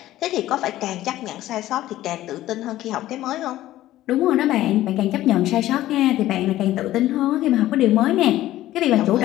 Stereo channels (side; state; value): right; quieter; 14.7 dB